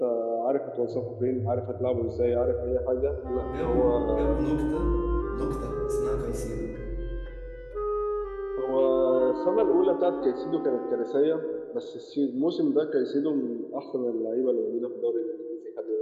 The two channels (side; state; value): both; identical; correlation 1.00